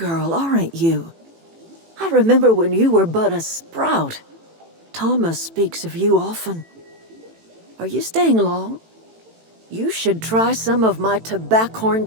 aren't you? I remember when you were but a sprout. Thomas speaks of you often. Are you staying long? You should try some of my tobaccorn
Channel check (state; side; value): late; left; 18 ms